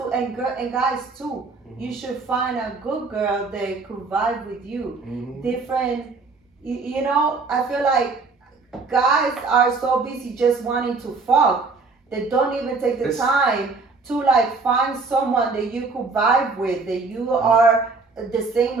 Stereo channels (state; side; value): quieter; left; 4.2 dB